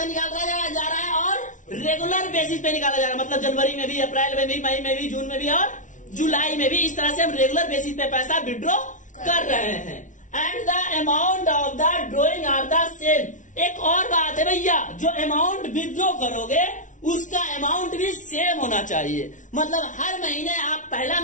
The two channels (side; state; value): right; late; 0.37 ms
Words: निकाला जा रहा है और रेगुलर बेसिस पे निकाला जा रहा है, मतलब जनवरी में भी, अप्रैल में भी, मई में भी, जून में भी और जुलाई में भी। इस तरह से हम रेगुलर बेसिस पे पैसा विड्रॉ कर रहे हैं। And the amount of the drawing are the same. एक और बात है भैया, जो अमाउंट विड्रॉ करोगे उसका अमाउंट भी सेम होना चाहिए। मतलब हर महीने आप पहला